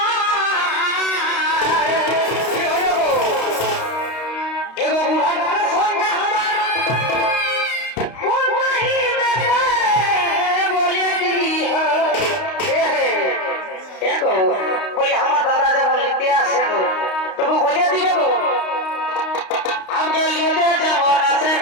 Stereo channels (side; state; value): right; late; 32 ms